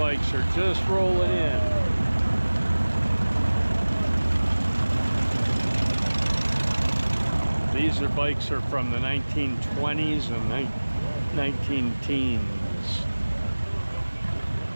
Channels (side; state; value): both; inverted; correlation -1.00